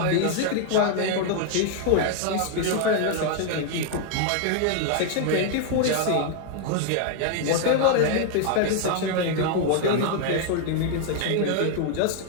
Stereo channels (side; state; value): both; different; correlation 0.00